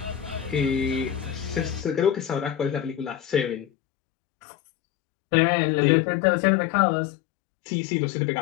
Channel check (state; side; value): drops out; right; at 3.7 s